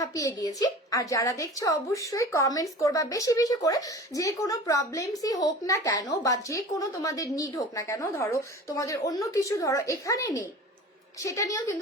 গিয়েছি। আর যারা দেখছো অবশ্যই কমেন্টস করবা বেশি বেশি করে, যে কোনো প্রবলেমসই হোক না কেন বা যে কোনো তোমাদের নিড হোক না কেন, ধরো তোমাদের অন্য কিছু ধরো এখানে নেই, সেটা নিয়েও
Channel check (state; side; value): normal; both; correlation 0.38